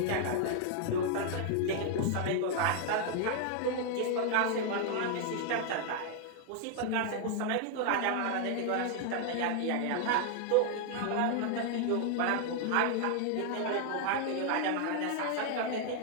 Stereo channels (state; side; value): different; both; correlation 0.00